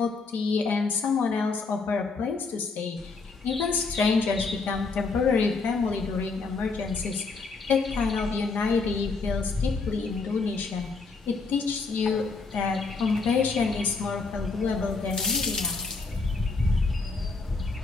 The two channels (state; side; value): quieter; right; 4.2 dB